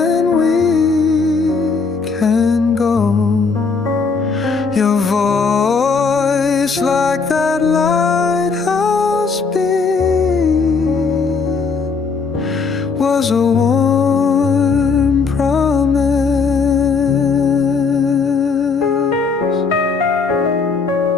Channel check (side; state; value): right; quieter; 4.9 dB